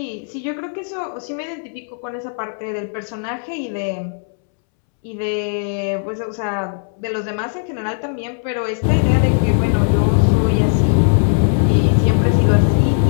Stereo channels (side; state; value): right; silent; 67 dB below the other